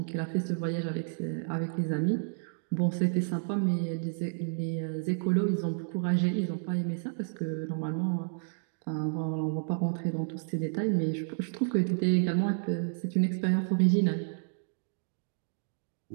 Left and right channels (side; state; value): left; silent; digital silence